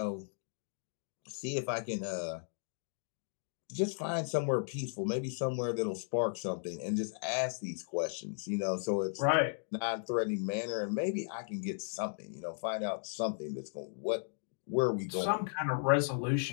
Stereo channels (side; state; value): right; silent; digital silence